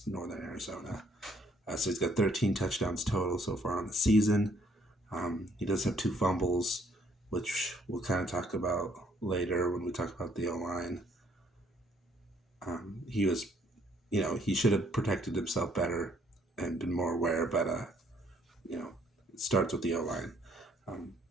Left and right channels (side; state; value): both; normal; correlation 0.66